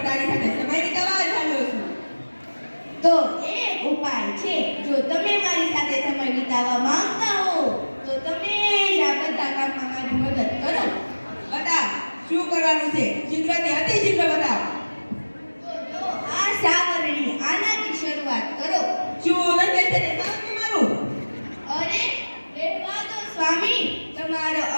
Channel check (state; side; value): inverted; both; correlation -1.00